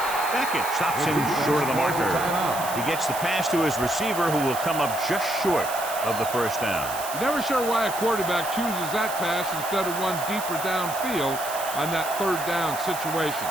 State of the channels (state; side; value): noise; right; hiss, 9 dB below the sound